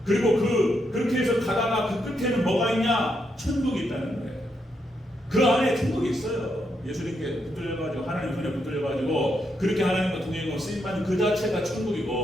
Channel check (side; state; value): both; normal; correlation 0.80